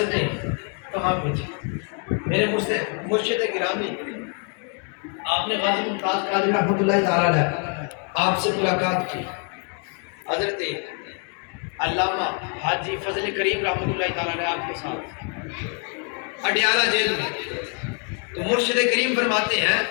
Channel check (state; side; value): quieter; right; 38.8 dB